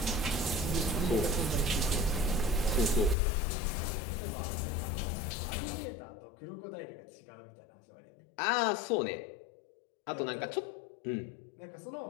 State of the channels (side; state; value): right; drops out; at 3.2 s